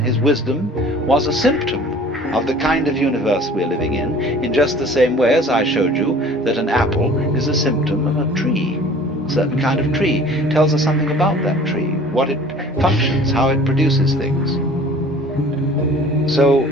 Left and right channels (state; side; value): normal; both; correlation 0.48